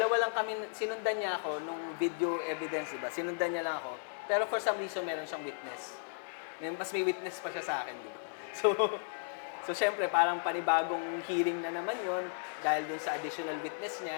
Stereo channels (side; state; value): right; silent; 55 dB below the other